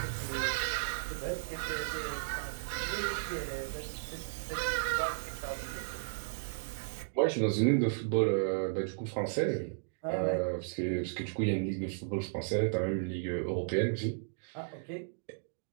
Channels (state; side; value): silent; left; digital silence